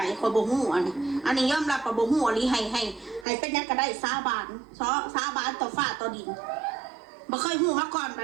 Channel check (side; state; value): left; drops out; at 3.2 s